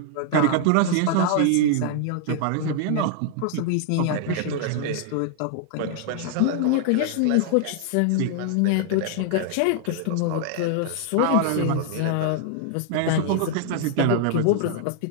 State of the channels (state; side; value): different; both; correlation -0.01